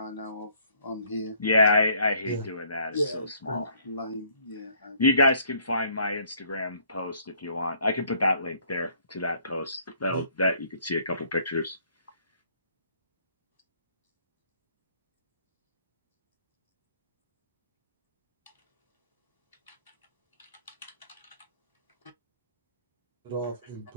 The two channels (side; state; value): both; inverted; correlation -0.62